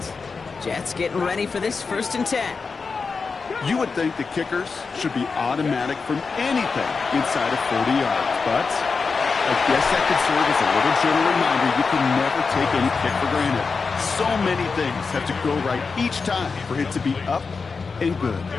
Jets getting ready for this 1st and 10. You would think the kickers should be automatic from anything inside of 40 yards, but I guess that could serve as a little gentle reminder you can never take any kick for granted. So many things have to go right each time for it to be up and good.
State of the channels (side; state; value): right; quieter; 4.8 dB